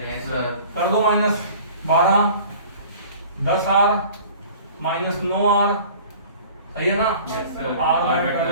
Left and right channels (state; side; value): inverted; both; correlation -0.45